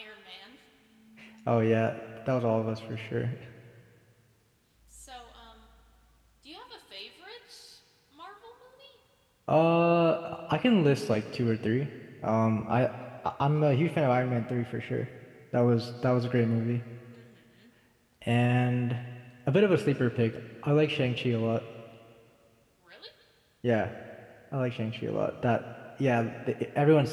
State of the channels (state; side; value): identical; both; correlation 1.00